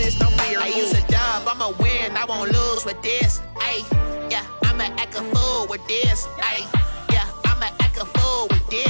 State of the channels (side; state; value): both; inverted; correlation -1.00